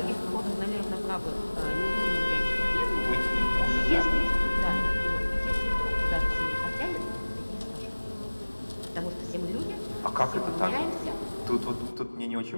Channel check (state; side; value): inverted; both; correlation -1.00